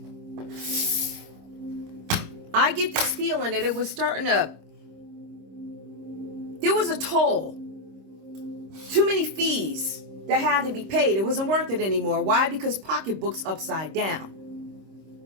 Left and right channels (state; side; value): late; left; 26 ms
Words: I get this feeling that it was starting to... There was a toll. Too many fees that had to be paid. It wasn't worth it anymore. Why? Because pocketbook's upside down.